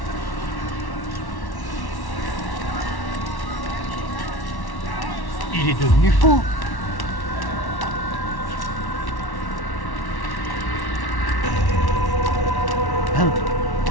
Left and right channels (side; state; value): right; late; 1.1 ms